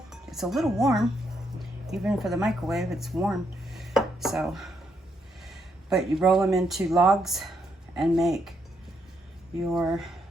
It's a little warm. Even for the microwave, it's warm. So, but you roll them into logs and make your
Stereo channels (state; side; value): normal; both; correlation 0.77